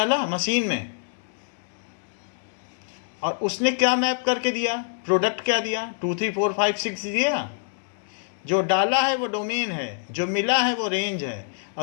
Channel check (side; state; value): right; silent; digital silence